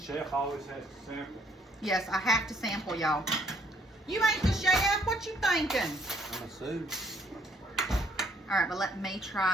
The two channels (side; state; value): both; normal; correlation 0.66